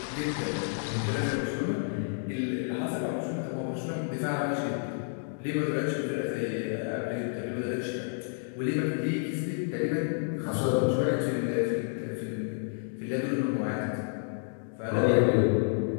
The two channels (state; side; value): silent; right; digital silence